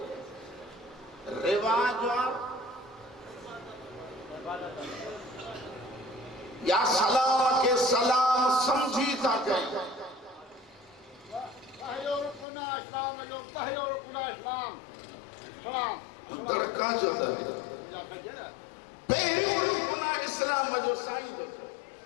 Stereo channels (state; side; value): drops out; right; at 12.5 s